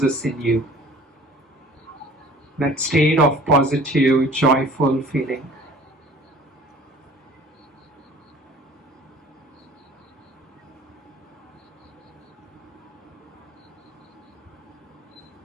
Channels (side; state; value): both; normal; correlation 0.48